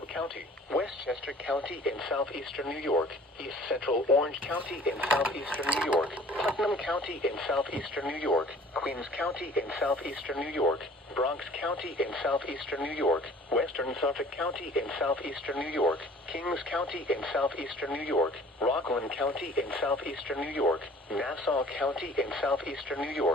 County, Westchester County in southeastern New York, East Central Orange County in southeastern New York, Putnam County in southeastern New York, Queens County in southeastern New York, Bronx County in southeastern New York, Western Suffolk County in southeastern New York, Kings County in southeastern New York, Rockland County in southeastern New York, Nassau County in southeastern New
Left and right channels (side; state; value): both; normal; correlation 0.49